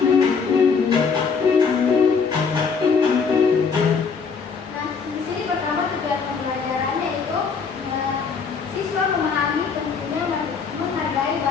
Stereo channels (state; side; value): quieter; right; 5.5 dB